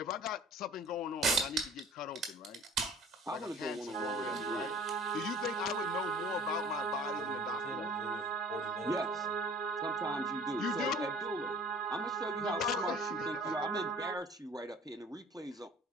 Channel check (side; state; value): both; normal; correlation 0.48